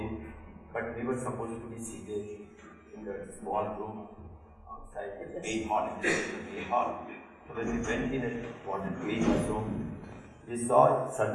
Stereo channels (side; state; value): both; identical; correlation 1.00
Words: but we were supposed to be seated in the small room outside the main hall. So when we went in and wanted to eat also, we saw,